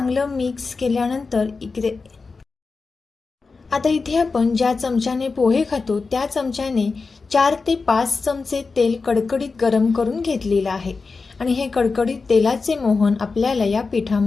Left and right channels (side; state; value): right; quieter; 4.3 dB